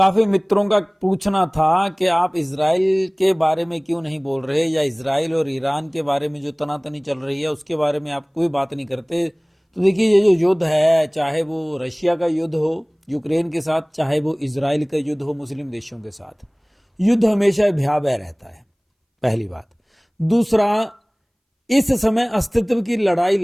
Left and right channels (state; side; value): identical; both; correlation 1.00